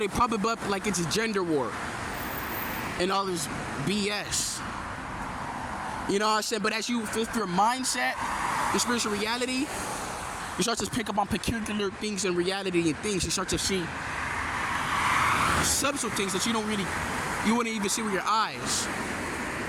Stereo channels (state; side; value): identical; both; correlation 1.00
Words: pop it up like it's a gender war and all this BS. You know what I'm saying? But as you flip your mindset, your spiritual reality, you start to pick up on peculiar things in reality and things. You start to see subtle things that you You wouldn't even see with your eyes.